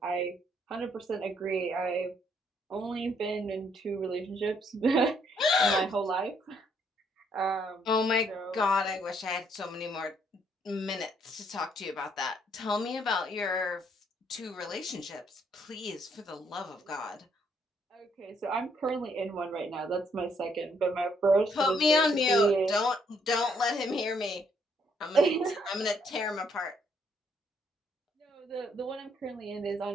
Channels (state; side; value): normal; both; correlation 0.70